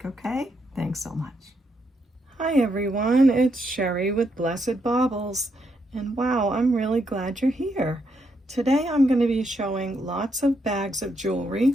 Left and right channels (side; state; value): both; normal; correlation 0.78